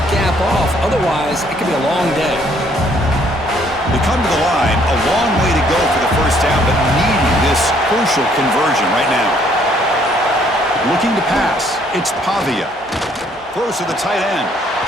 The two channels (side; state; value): both; normal; correlation 0.65